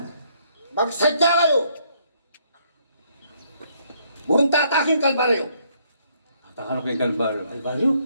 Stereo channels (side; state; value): both; inverted; correlation -0.68